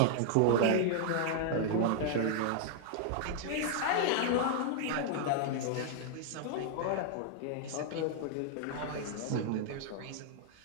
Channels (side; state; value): both; different; correlation -0.01